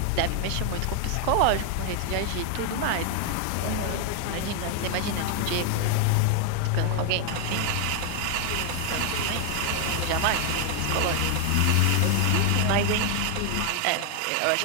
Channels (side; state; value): both; different; correlation 0.00